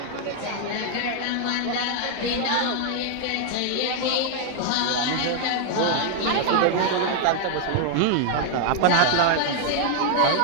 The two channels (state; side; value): different; both; correlation 0.00